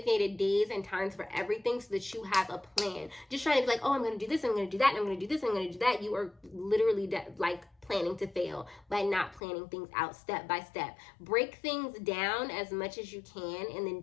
days and times for everything so that you have a plan. Just trying to be like, oh, I'm going to do this, I'm going to do that, I'm going to do this, I'm going to do that. You are literally like planning to fail by not planning things out step by step. Break things down as much as you can and then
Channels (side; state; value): right; drops out; at 9.4 s